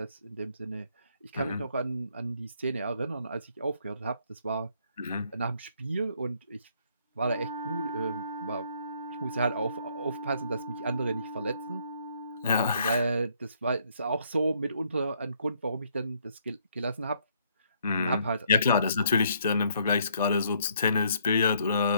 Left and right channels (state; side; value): inverted; both; correlation -0.68